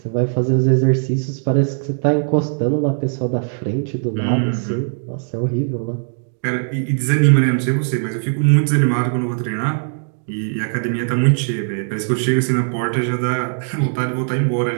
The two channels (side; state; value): left; silent; digital silence